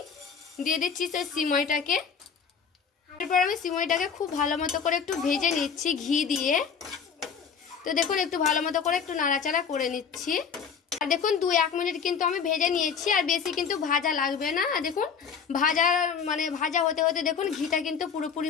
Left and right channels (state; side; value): quieter; right; 6.5 dB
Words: দিয়ে দিচ্ছি সেই সিমইটাকে। এরপর আমি সিমইটাকে খুব ভালো মতো করে একটু ভেজে নিচ্ছি ঘি দিয়ে। তো দেখুন একটু ভালো মতো করে একটু নাড়াচাড়া করে নিচ্ছি। আর দেখুন 2-1 মিনিট কিন্তু আমি ভেজে নিয়েছি, আর বেশি কিন্তু ভাজা লাগবে না। আর দেখুন ভাজা হতে হতে দেখুন ঘিটা কিন্তু